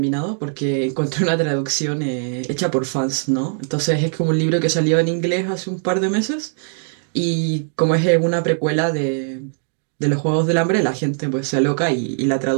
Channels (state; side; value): silent; left; digital silence